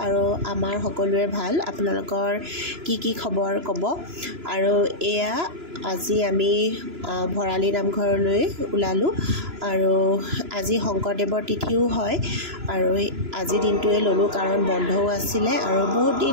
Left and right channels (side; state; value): left; late; 3.0 ms